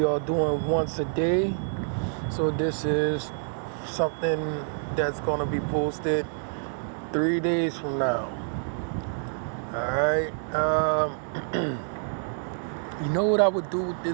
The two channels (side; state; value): left; silent; digital silence